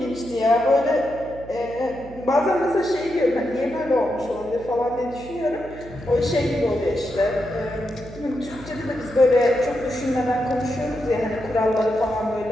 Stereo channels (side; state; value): right; noise; hum, 17 dB below the sound